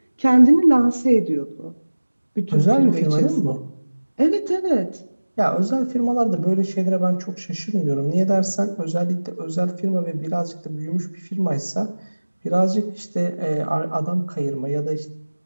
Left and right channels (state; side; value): inverted; both; correlation -1.00